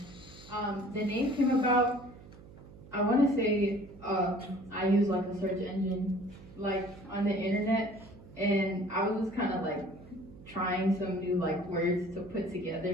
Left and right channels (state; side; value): noise; right; hum, 19 dB below the sound